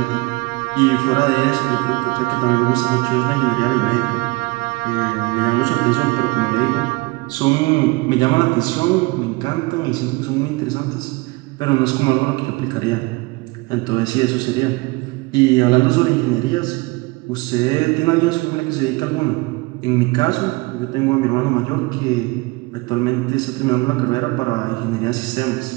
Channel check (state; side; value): quieter; left; 24.2 dB